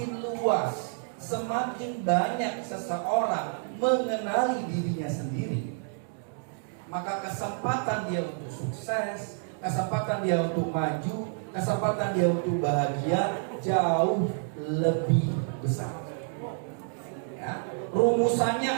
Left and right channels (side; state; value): left; silent; 59 dB below the other